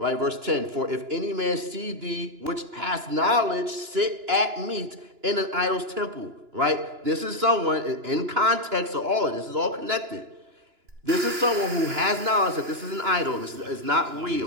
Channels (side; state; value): left; late; 2.9 ms